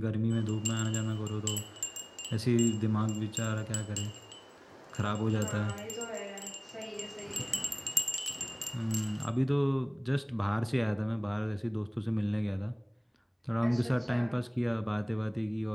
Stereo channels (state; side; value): identical; both; correlation 1.00